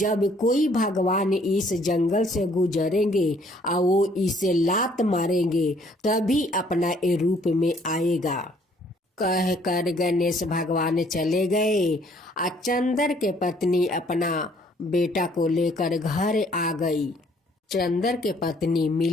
कोई भगवान इस जंगल से गुजरेंगे और वो इसे लात मारेंगे तभी अपना ए रूप में आएगा। कह कर गणेश भगवान चले गए। चंदर के पत्नी अपना बेटा को लेकर घर आ गई। चंदर के पत्नी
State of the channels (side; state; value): both; normal; correlation 0.62